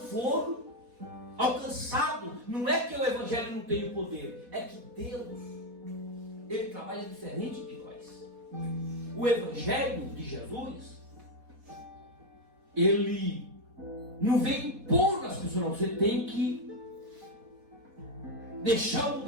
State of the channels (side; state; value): left; late; 4.1 ms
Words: alcançados. Não é que o Evangelho não tem o poder, é que Deus, Ele trabalha diferente de nós. O Evangelho de Jesus, Ele não vem impor nas pessoas, não. Você tem que deixar